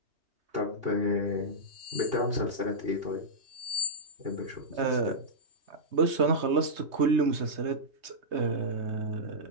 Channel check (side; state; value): left; late; 3.2 ms